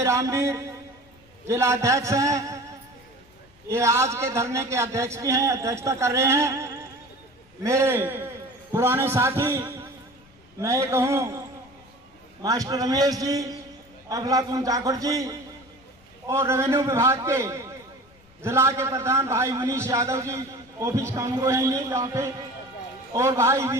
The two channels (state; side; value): noise; left; rumble, 29 dB below the sound